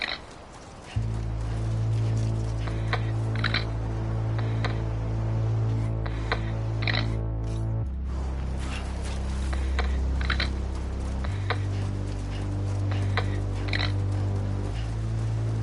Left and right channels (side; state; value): both; identical; correlation 1.00